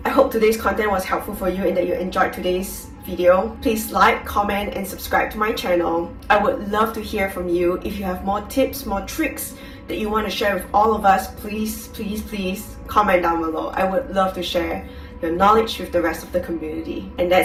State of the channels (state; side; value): identical; both; correlation 1.00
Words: I hope today's content was helpful for you and that you enjoyed today's video. Please like, comment, and subscribe to my channel. I would love to hear from you. If you have more tips, more tricks that you want to share with all of us, please comment down below. I would love to share your knowledge with the rest of the community. And